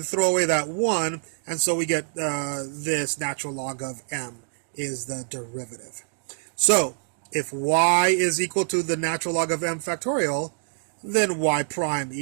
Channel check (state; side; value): silent; left; digital silence